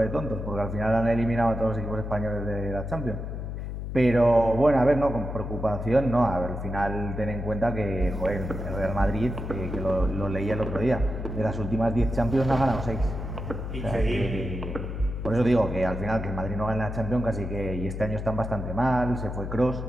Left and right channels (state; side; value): noise; left; hum, 6 dB below the sound